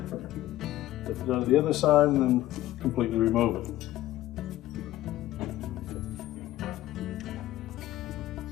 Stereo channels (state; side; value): quieter; right; 15.1 dB